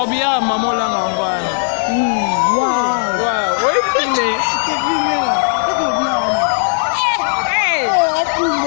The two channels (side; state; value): right; silent; digital silence